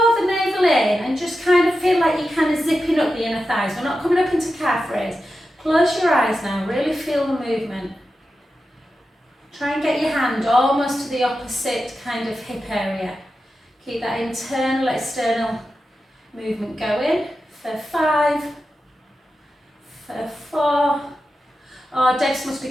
the navel in and just kind of feel like you're kind of zipping up the inner thighs. We're not coming up into calf raise. Close your eyes now, really feel the movement. Try and get your hand almost to the opposite kind of hip area. Keep that internal, external movement going for 5, for 4. Oh, Debs must be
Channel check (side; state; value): both; normal; correlation 0.91